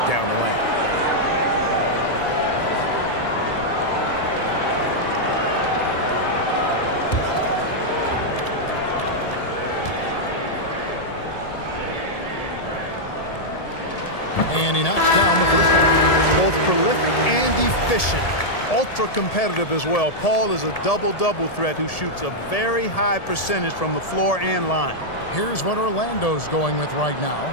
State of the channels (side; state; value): right; late; 1.7 ms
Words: down the lane. And he knocks down the first one. Both prolific and efficient. Ultra competitive as well. Paul is a double-double threat who shoots a very high percentage from the floor and line. Here's what Orlando's going with right now.